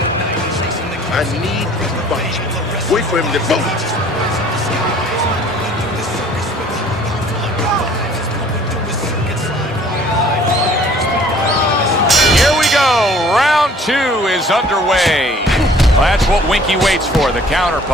need to fight. Wait for him to bounce. Here we go. Round 2 is underway. Well, that's what Winky waits for, the counter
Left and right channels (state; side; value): normal; both; correlation 0.54